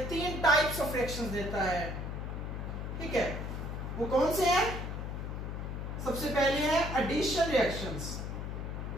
तीन टाइप्स ऑफ रिएक्शंस देता है। ठीक है, वो कौन से हैं? सबसे पहले है एडिशन रिएक्शंस।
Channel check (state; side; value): noise; left; hum, 5 dB below the sound